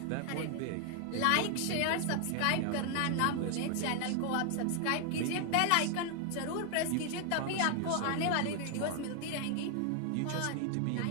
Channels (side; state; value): both; different; correlation 0.00